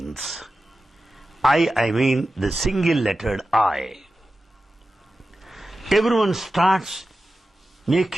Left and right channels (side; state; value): both; normal; correlation 0.93